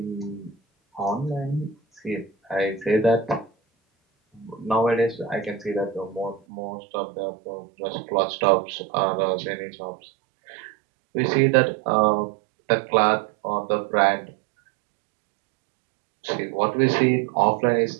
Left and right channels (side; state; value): left; drops out; at 6.4 s